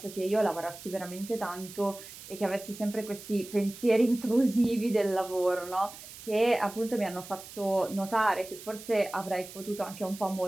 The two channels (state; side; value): noise; right; hiss, 15 dB below the sound